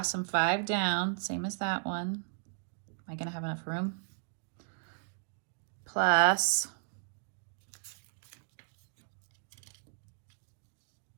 and 5 down, same as that one. Am I going to have enough room? Plus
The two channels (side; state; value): left; silent; digital silence